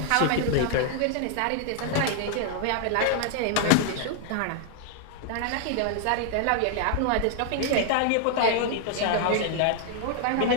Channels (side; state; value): both; different; correlation 0.00